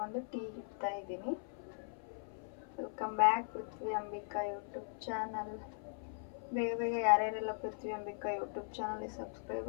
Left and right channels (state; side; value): silent; right; 52 dB below the other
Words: ಟೀ ಇಡ್ತಾ ಇದ್ದೀನಿ. ವೆಲ್ಕಮ್ ಬ್ಯಾಕ್ ಪೃಥ್ವಿ ಅಂಬಿಕಾ ಯೂಟ್ಯೂಬ್ ಚಾನಲ್. ಬೇಗ ಬೇಗ ಯಾರ್ಯಾರೆಲ್ಲ ಪೃಥ್ವಿ ಅಂಬಿಕಾ ಯೂಟ್ಯೂಬ್ ಚಾನಲ್ಗೆ ಸಬ್ಸ್ಕ್ರೈಬ್